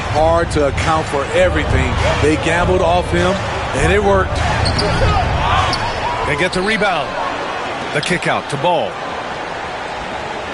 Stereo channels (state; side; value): identical; both; correlation 1.00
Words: to account for everything. They gambled off him, and it worked. They get the rebound. The kick out to Ball.